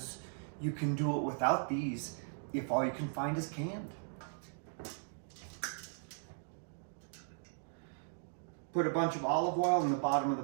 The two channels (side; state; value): left; silent; digital silence